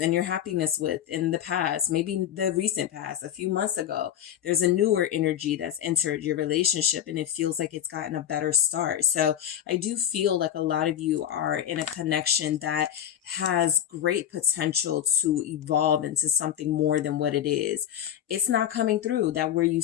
your happiness with in the past, maybe the recent past, a few months ago. There's a newer energy that's entered your relationship and it feels like it's gotten a better start. So I do feel like a lot of you are in a connection that has great potential to evolve into something more than what it is. It's not coming through that where you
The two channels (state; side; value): quieter; right; 10.4 dB